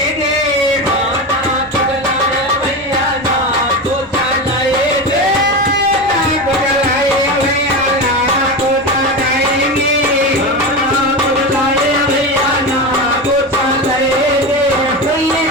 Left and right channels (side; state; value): both; normal; correlation 0.21